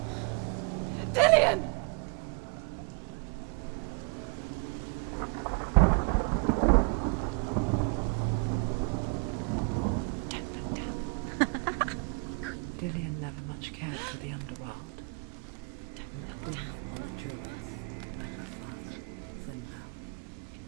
Dillion! Be quick. Dillion never much cared for the underworld, and looked dimly upon the druids, like her father, Zinbel.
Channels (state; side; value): quieter; left; 33.1 dB